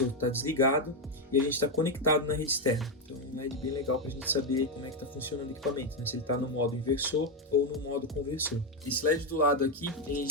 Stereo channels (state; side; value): normal; both; correlation 0.06